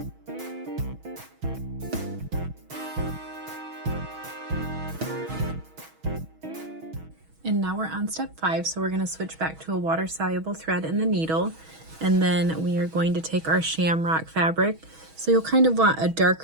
And now we're on step 5, so we're going to switch back to a water-soluble thread in the needle, and then we are going to take our Shamrock fabric. So you'll kind of want a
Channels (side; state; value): left; late; 6.2 ms